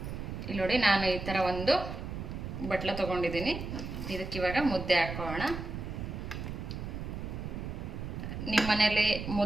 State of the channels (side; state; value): right; noise; rumble, 6 dB below the sound